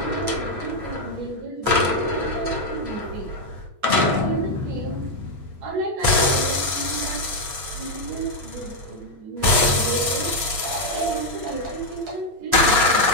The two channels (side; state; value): left; late; 8.5 ms